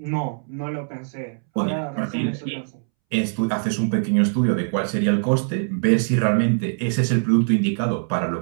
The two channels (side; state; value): left; silent; 64 dB below the other